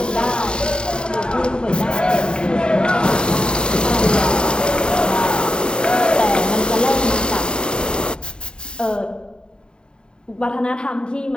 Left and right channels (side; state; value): right; late; 0.049 ms